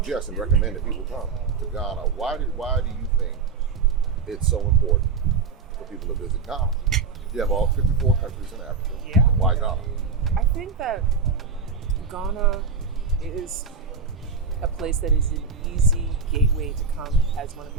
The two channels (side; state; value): left; quieter; 5.2 dB